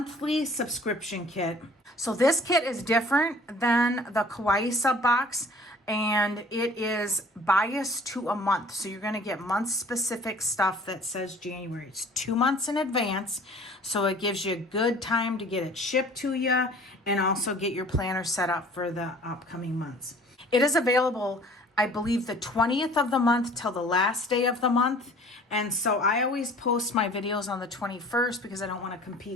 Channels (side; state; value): both; normal; correlation 0.50